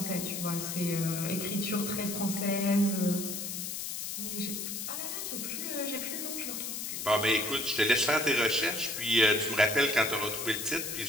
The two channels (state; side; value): noise; left; hiss, 5 dB below the sound